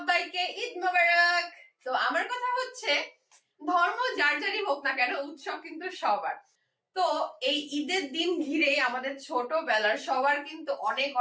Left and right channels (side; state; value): both; identical; correlation 1.00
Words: ঈদ মোবারক। তো আমার কথা হচ্ছে ধর্ম যার যারই হোক না কেন উৎসব কিন্তু সবার। তো এই ঈদের দিন ঘিরে আমাদের ছোটবেলার সবার কিন্তু অনেক